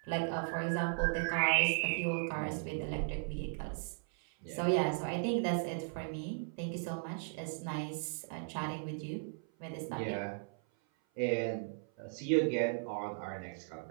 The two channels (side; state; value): left; silent; 53 dB below the other